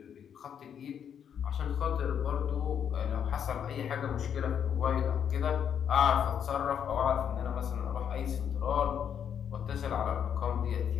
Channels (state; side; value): quieter; right; 8.4 dB